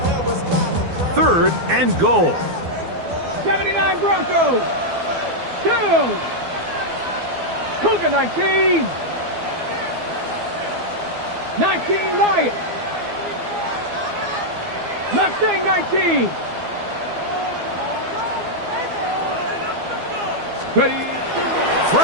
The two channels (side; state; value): left; late; 12 ms